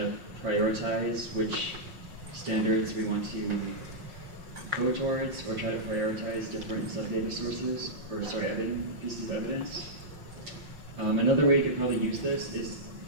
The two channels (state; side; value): late; left; 5.5 ms